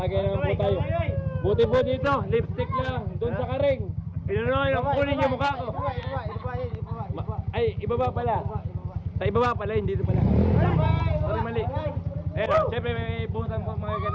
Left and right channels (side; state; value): both; identical; correlation 1.00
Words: naman po tayo. Buti po dito, lipstick lang, doon sa karing. Pinunoy, kunin yung mukha ko. Ay, ibaba pala. Sa ibaba pala, hindi dito pala. Sorry, mali. Ayun, siyempre may buhusan po mga